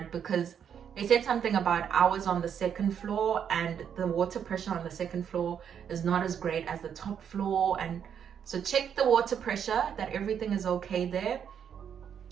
because they said something about I was on the second floor and the water pressure on the second floor is not as great as the top floor. And so check the water pressure, that everything is okay there.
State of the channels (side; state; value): left; quieter; 8.2 dB